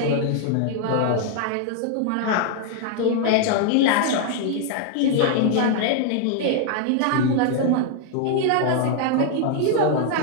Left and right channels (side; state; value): both; different; correlation 0.00